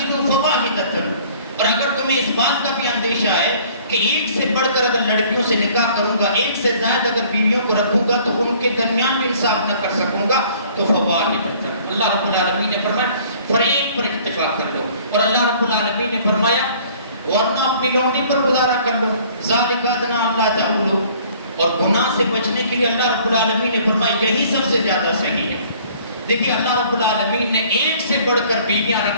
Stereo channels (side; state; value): both; inverted; correlation -0.54